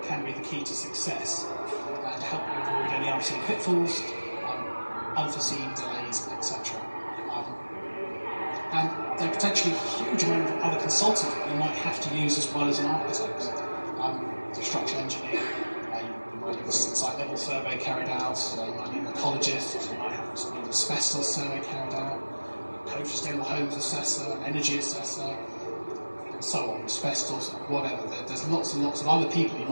can be the key to success and help you avoid any unforeseen pitfalls, unforeseen delays, etc. And there are potentially a huge amount of other consultants that you might have to use as well as an architect. A structural engineer, you might need a site level survey carried out, you might need an ecologist, you might have an asbestos survey carried out, code for sustainable homes assessor, energy assessor, and so on, asbestos, whatever. There's lots and lots of other people you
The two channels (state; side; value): inverted; both; correlation -1.00